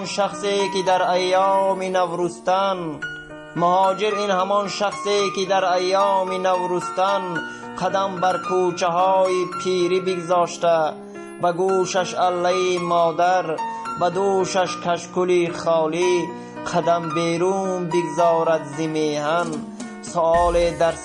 شخصی که در ایام نوروستان مهاجر این همان شخصی که در ایام نوروستان قدم بر کوچه های پیری بگذاشته، به گوشش اله مادر، به دوشش کشکولی خالی، قدم بیرون بگذارد ز میهن. سؤال در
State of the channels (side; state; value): both; identical; correlation 1.00